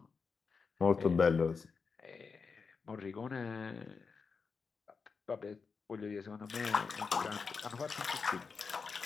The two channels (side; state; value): right; quieter; 5.1 dB